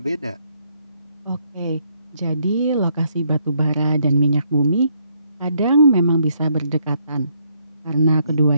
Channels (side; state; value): both; inverted; correlation -0.72